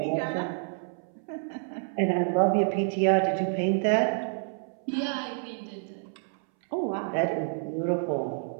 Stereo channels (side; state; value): left; silent; 59 dB below the other